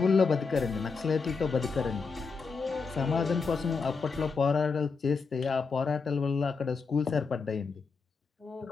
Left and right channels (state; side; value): quieter; right; 4.8 dB